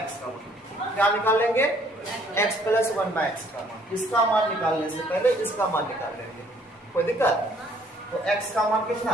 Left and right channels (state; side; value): normal; both; correlation 0.61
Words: का मान। क्या निकाल लेंगे? x + 1/x का मान। इसका मान निकालने से पहले इसका मान निकाल लेंगे, कोई दिक्कत? तो x का मान कितना?